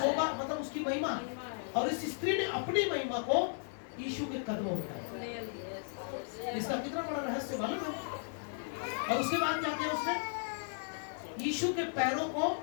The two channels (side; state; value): right; silent; digital silence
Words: मतलब उसकी महिमा। और इस स्त्री ने अपनी महिमा को यीशु के कदमों में डाला। इसका कितना बड़ा रहस्य मालूम है? और उसके बाद क्या किया उसने? यीशु के पैरों को